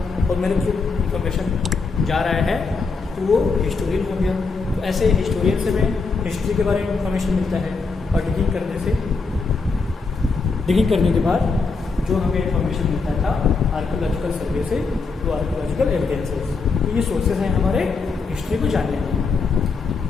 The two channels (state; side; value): quieter; right; 4.4 dB